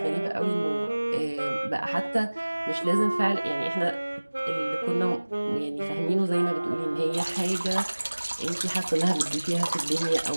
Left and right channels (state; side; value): inverted; both; correlation -1.00